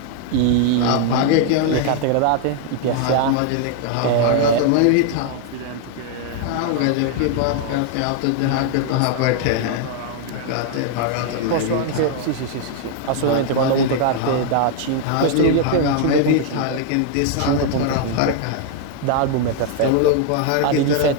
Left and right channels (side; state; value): both; different; correlation 0.00